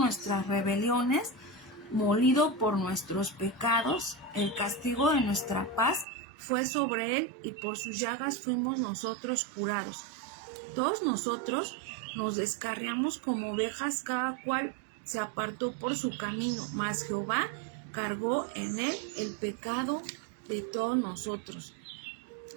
rebeliones, molido por nuestros pecados. El castigo de nuestra paz fue sobre él, y por sus llagas fuimos nosotros curados. Todos nosotros nos descarriamos como ovejas, cada cual se apartó por su camino, mas Jehová cargó en él el pecado de todos nosotros.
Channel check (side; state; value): left; drops out; at 6.1 s